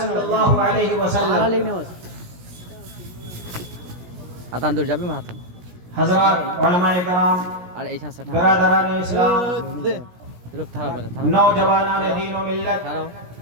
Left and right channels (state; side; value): late; left; 17 ms